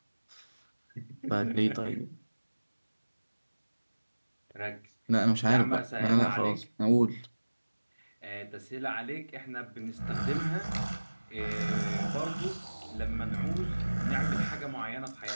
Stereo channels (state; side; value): inverted; both; correlation -1.00